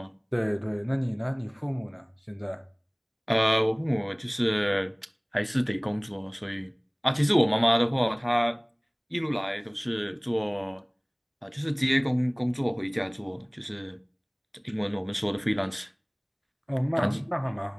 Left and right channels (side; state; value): both; identical; correlation 1.00